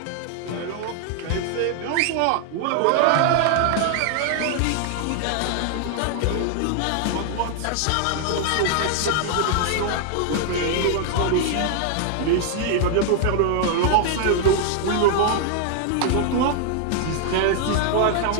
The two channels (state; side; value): different; both; correlation 0.00